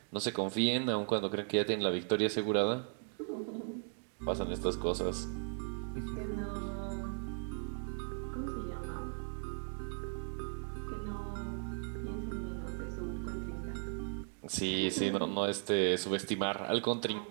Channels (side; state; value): left; silent; 53 dB below the other